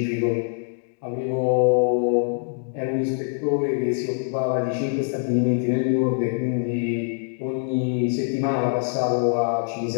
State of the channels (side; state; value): right; silent; 63 dB below the other